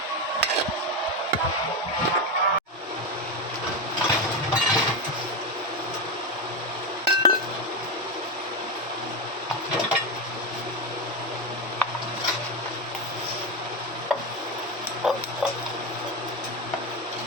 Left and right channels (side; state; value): both; normal; correlation 0.13